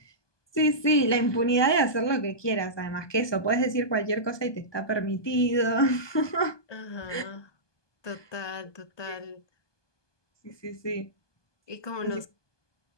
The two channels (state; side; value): late; right; 1.2 ms